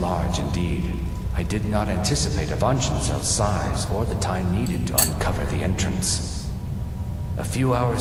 indeed. I did not anticipate Avangenzel's size or the time needed to uncover the entrance. A few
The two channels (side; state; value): both; identical; correlation 1.00